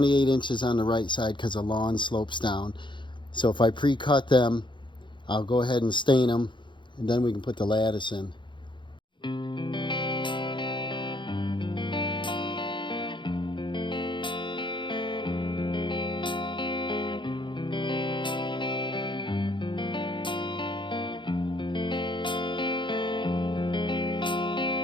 inches on the right side because the lawn slopes down. So if I pre-cut them, I'll go ahead and stain them, and then we can put the lattice in.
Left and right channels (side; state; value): right; late; 0.23 ms